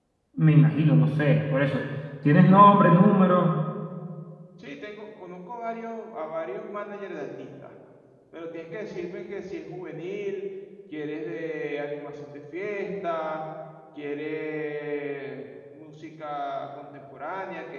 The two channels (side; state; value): both; identical; correlation 1.00